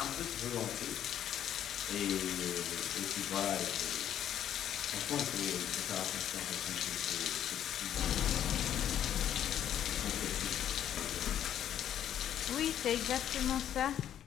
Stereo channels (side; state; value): right; quieter; 10.4 dB